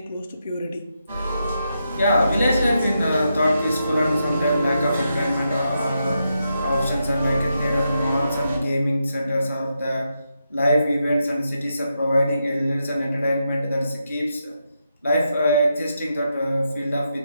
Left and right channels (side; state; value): both; inverted; correlation -0.84